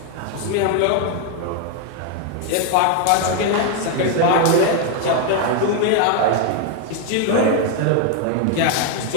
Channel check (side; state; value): both; different; correlation 0.00